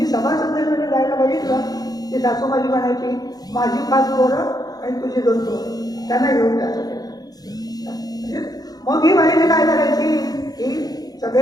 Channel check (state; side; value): late; right; 0.19 ms